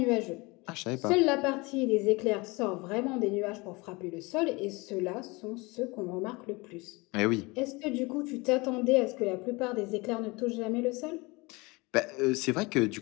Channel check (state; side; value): quieter; right; 25.1 dB